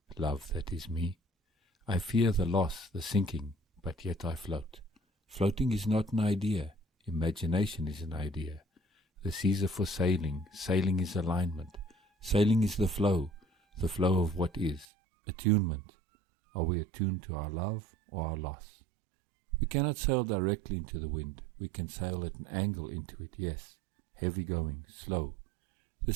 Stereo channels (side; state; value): left; drops out; at 14.9 s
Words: love that is me? I fear the loss, the sinking, but yet I float. Floating is not an idea, imagination is an idea. The seas are for sailing, sailing is alignment. Sailing is the flow of what is. Attunement. Are we attuned to our love or our loss? We cannot sail directly into the wind. We can sail at an angle into it, yes. Heavy going, slow. The